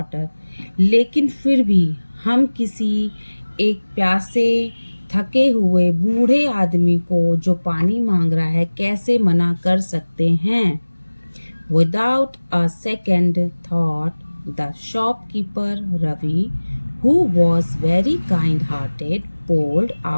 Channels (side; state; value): both; inverted; correlation -1.00